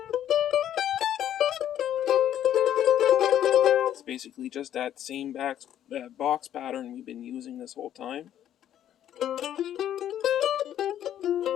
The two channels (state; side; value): quieter; right; 10.9 dB